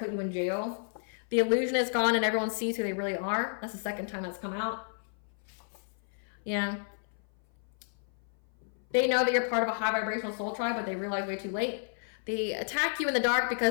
you in jail. The illusion is gone and everyone sees who they really are. That's the second time that's come out. Yeah. They know that you're part of a high vibrational soul tribe, but they realize way too late. They attack you in the dark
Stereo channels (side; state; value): right; silent; 56 dB below the other